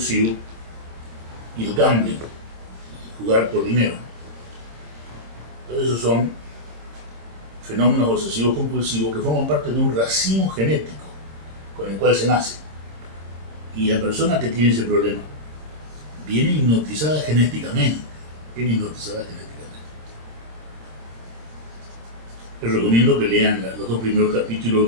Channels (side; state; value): left; late; 26 ms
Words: y el gambling, jugar por dinero. Todos esos son fenómenos obsesivos compulsivos que forman parte de un racimo genético con el cual se nace. Y la persona que tiene ese problema viene hipnotizada genéticamente. Les recomiendo que lean los 2 primeros capítulos